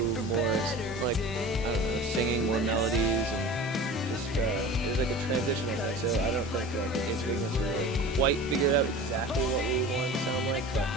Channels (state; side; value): normal; both; correlation 0.37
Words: more I don't know, singing, more melodies, and just it was like a transitional thing. So I don't think Age of Ignorance we really quite figured out exactly what we wanted to sound like, but